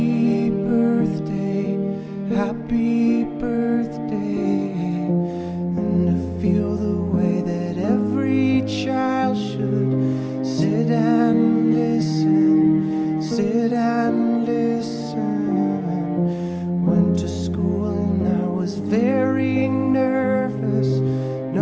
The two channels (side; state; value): both; identical; correlation 1.00